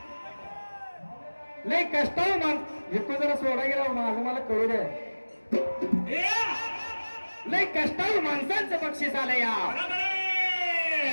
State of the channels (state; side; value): inverted; both; correlation -1.00